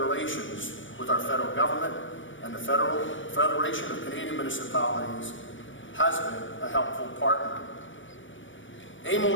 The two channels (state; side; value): late; right; 0.56 ms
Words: with our federal government, and the Federation of Canadian Municipalities has been a helpful partner.